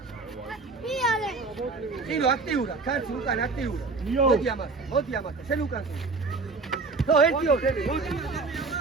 Sino, actiura, cansi, ukan, actiura. Moti amata, sen ukan. No, etio,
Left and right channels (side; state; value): left; quieter; 4.0 dB